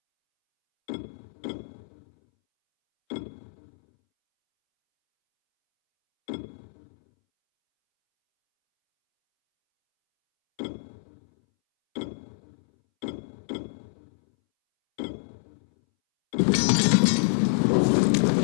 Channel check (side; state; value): right; silent; 60 dB below the other